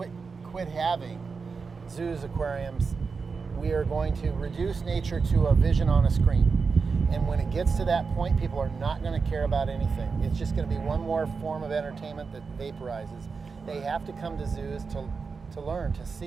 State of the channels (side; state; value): left; quieter; 4.9 dB